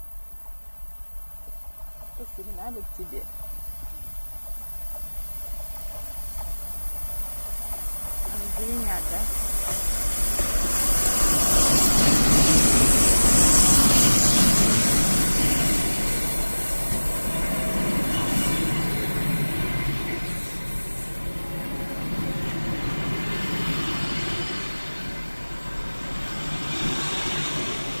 Посигналит тебе. Не звенят, да?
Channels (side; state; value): both; inverted; correlation -1.00